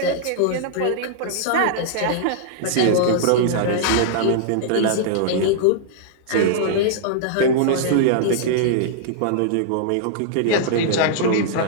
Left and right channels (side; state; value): both; different; correlation -0.02